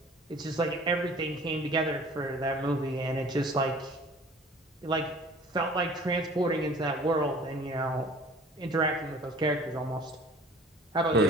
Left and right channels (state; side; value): normal; both; correlation 0.48